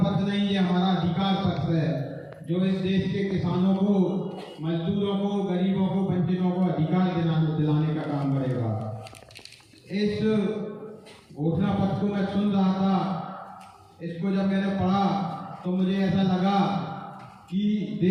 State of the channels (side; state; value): both; identical; correlation 1.00